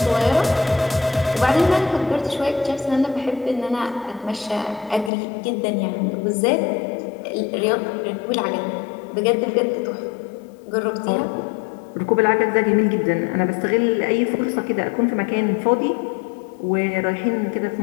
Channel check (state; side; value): drops out; right; at 5.1 s